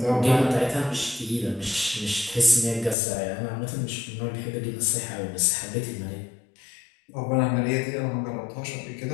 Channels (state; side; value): drops out; right; at 3.0 s